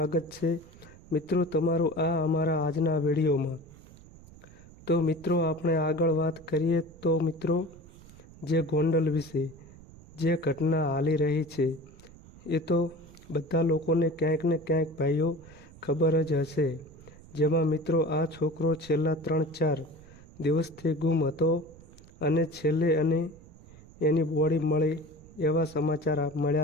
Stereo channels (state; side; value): noise; right; rumble, 21 dB below the sound